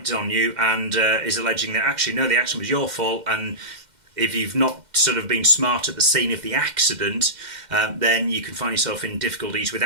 on you and is alleging that actually no, the accident was your fault. And if you've not sort of been smart at the scene of the accident, then you can find yourself in difficulties with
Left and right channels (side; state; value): left; late; 2.1 ms